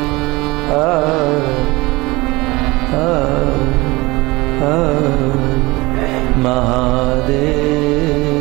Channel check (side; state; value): left; quieter; 22.3 dB